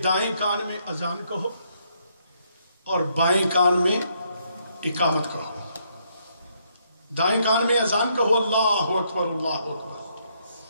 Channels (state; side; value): inverted; both; correlation -0.73